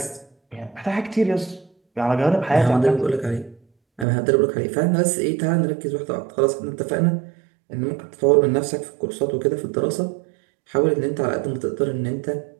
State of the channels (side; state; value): left; drops out; at 4.0 s